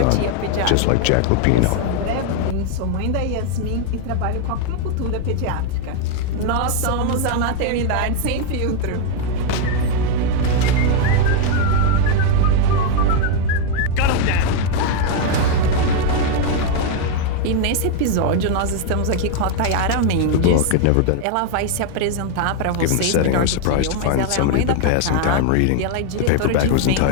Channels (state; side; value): different; both; correlation 0.00